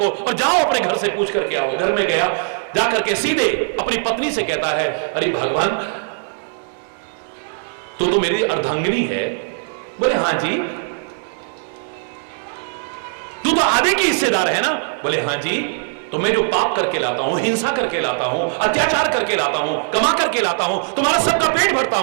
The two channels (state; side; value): silent; left; digital silence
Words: और जाओ अपने घर से पूछ करके आओ। घर में गया, जाकर के सीधे अपनी पत्नी से कहता है, अरे भगवान तो मेरी अर्धांगिनी है। बोले हाँ जी। तू तो आधे की हिस्सेदार है ना? बोले हाँ जी। तो मैं जो पाप करके लाता हूं, हिंसा करके लाता हूं, अत्याचार करके लाता हूं, कमा करके लाता हूं, तुम्हारा सबका पेट भरता